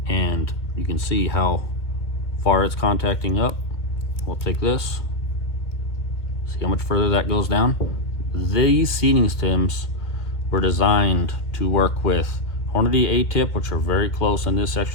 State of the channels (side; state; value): right; late; 2.2 ms